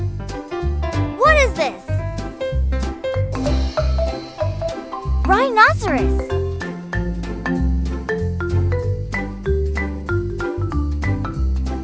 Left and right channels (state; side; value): identical; both; correlation 1.00